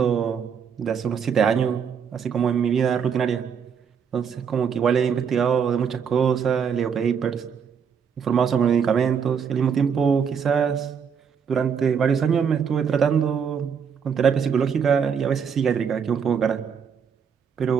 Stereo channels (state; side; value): quieter; left; 7.0 dB